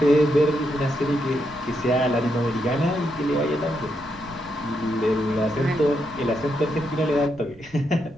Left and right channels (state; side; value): noise; right; rumble, 24 dB below the sound